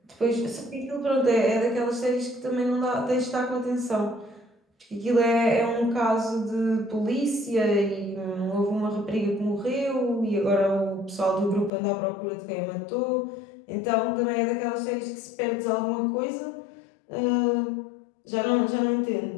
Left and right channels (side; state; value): right; drops out; at 11.7 s